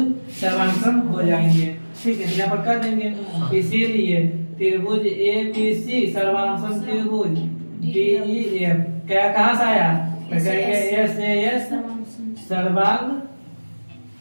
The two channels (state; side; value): inverted; both; correlation -1.00